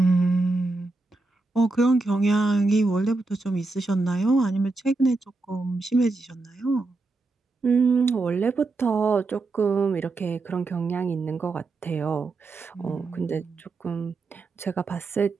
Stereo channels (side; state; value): left; quieter; 3.4 dB